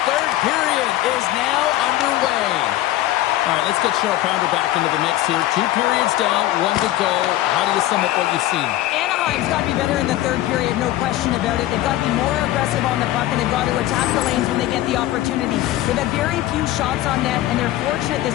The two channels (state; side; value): quieter; right; 14.9 dB